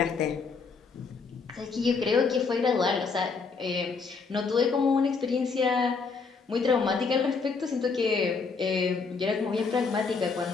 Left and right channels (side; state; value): right; quieter; 4.9 dB